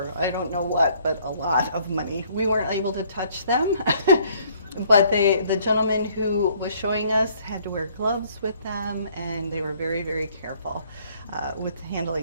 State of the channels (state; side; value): inverted; both; correlation -0.62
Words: I don't know what, but a lot of money. We weren't able to touch them, but the gentleman who was showing us had to wear gloves with them, and they were very, very careful with the